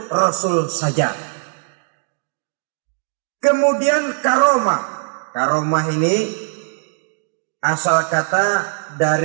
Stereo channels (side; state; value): left; silent; digital silence